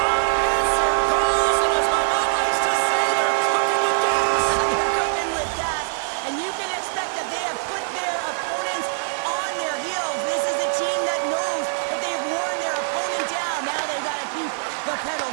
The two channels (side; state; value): left; silent; 63 dB below the other